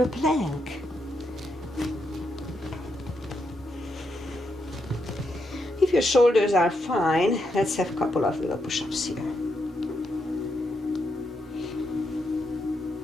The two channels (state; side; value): normal; both; correlation 0.81